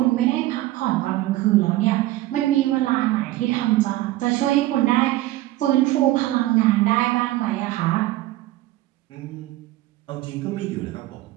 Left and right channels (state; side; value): quieter; left; 16.5 dB